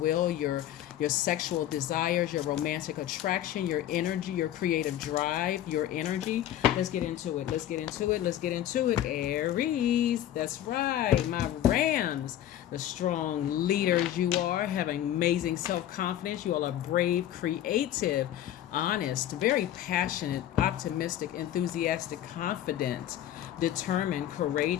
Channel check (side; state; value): right; quieter; 12.0 dB